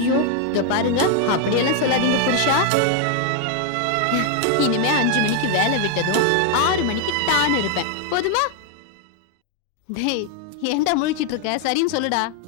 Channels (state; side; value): different; both; correlation 0.00